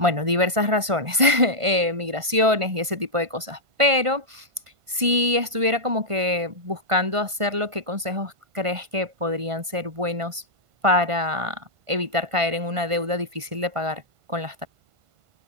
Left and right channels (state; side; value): late; left; 1.5 ms